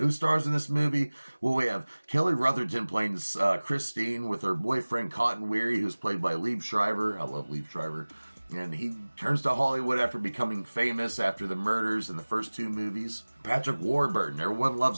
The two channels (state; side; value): inverted; both; correlation -1.00